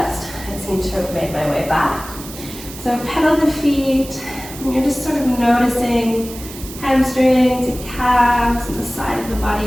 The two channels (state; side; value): noise; right; hiss, 14 dB below the sound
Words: I seem to have made my way back. So pedal the feet, and you're just sort of noticing hamstrings and calves and the side of the